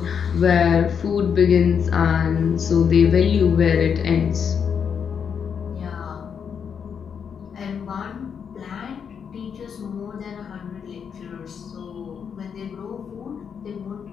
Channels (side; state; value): right; quieter; 7.1 dB